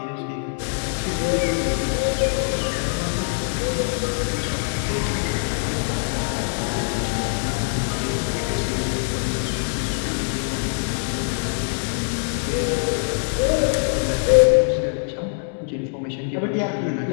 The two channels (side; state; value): right; silent; digital silence